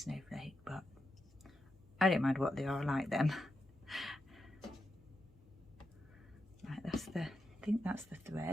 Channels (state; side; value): normal; both; correlation 0.87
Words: but I don't mind what they are, I like them. Right, I think that's the